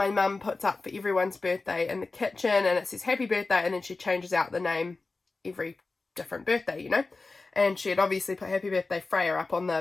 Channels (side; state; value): right; quieter; 3.7 dB